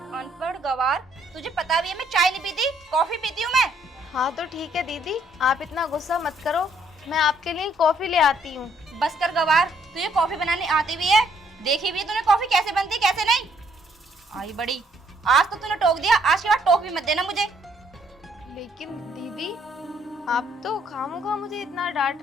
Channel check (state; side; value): normal; both; correlation 0.67